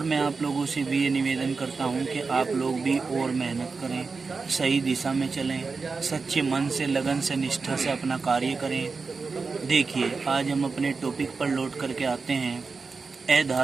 मैं आप लोगों से भी ये निवेदन करता हूँ कि आप लोग भी और मेहनत करें, सही दिशा में चलें, सच्चे मन से, लगन से, निष्ठा से अपना कार्य करें। देखिए, आज हम अपने टॉपिक पर लौट करके आते हैं,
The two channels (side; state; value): left; quieter; 4.5 dB